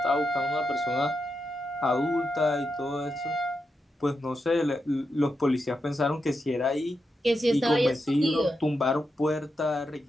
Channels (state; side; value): normal; both; correlation 0.86